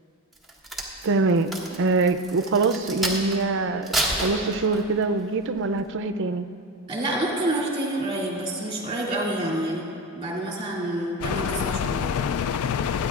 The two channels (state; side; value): normal; both; correlation 0.21